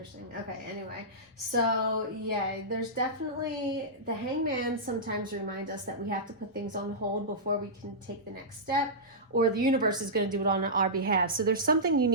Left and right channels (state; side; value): normal; both; correlation -0.15